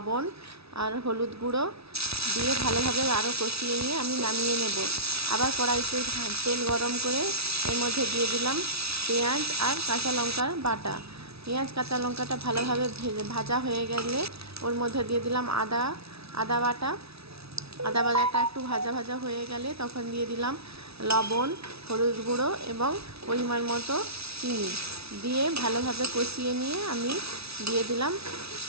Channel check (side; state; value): left; late; 0.78 ms